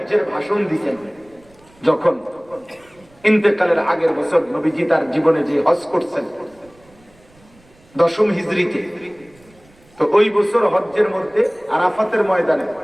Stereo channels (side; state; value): right; noise; rumble, 29 dB below the sound